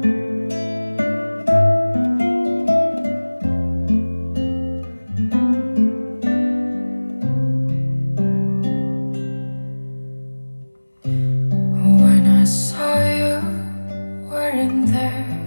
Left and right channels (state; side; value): inverted; both; correlation -1.00